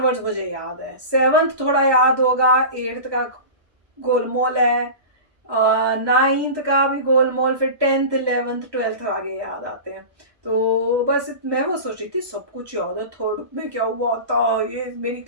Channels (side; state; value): left; late; 1.2 ms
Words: मुझे याद है। 7th थोड़ा याद होगा, 8th का गोलमोल है, 9th का भी गोलमोल, फिर 10th, 11th, 12th आगे याद आते हैं। तो बस मैं वो सोच रही थी सब कुछ याद है। 3rd में क्या हुआ था, ये मेरी